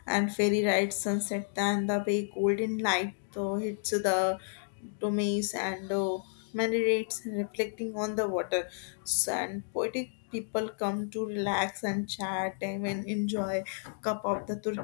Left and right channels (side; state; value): right; silent; digital silence